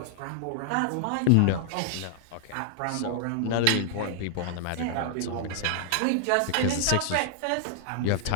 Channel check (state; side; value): different; both; correlation -0.01